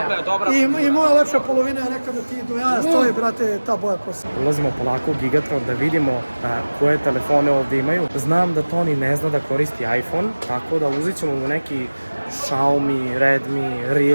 dobra. I moja lepša polovina je rekla da ti do jaja stoji, brate, ta boja kosa. Ulazimo polako u Gigatron da vidimo koje telefone ovdje imaju. Znam da Toni ne zna da koristi iPhone, tako da uzet ćemo mu neki Xiaomi, Redmi,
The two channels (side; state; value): both; inverted; correlation -1.00